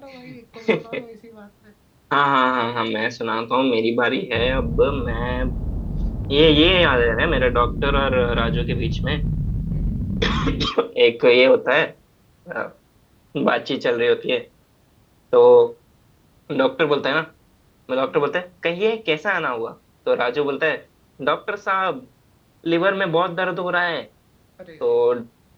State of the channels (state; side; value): identical; both; correlation 1.00